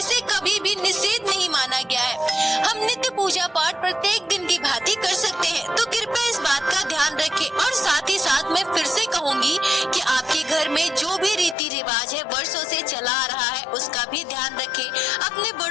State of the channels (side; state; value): right; drops out; at 11.6 s